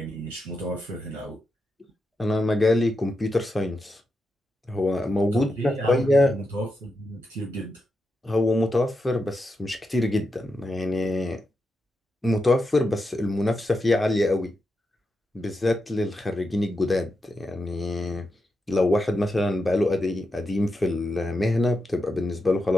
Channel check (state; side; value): normal; both; correlation 0.86